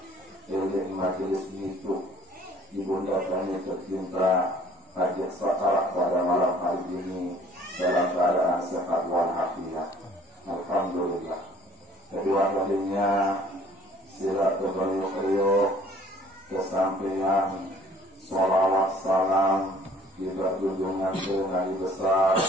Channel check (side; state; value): both; normal; correlation 0.55